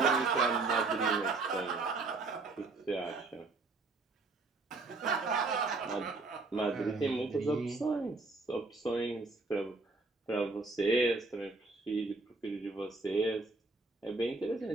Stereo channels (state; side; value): quieter; left; 3.6 dB